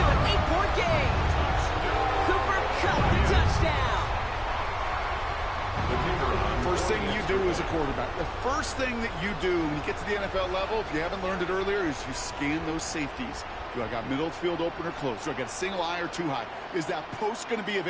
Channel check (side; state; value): both; identical; correlation 1.00